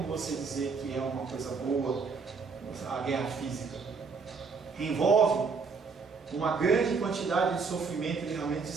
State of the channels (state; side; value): quieter; left; 5.0 dB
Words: você dizer que é uma coisa boa a guerra física. Envolve uma grande quantidade de sofrimento e realmente de